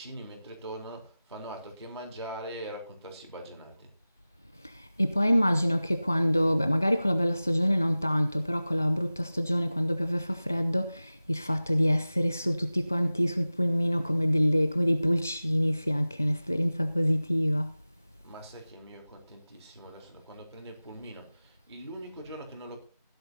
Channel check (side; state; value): both; inverted; correlation -0.97